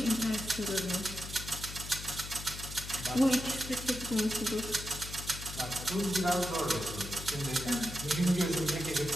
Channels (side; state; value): left; noise; hum, 10 dB below the sound